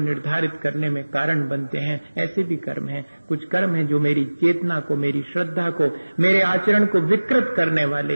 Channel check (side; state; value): both; inverted; correlation -1.00